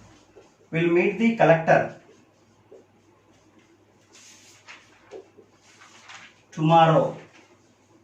Will meet the collector tomorrow.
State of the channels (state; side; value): identical; both; correlation 1.00